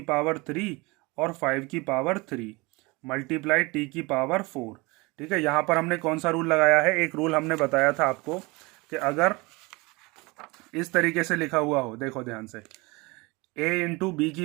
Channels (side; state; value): left; quieter; 25.1 dB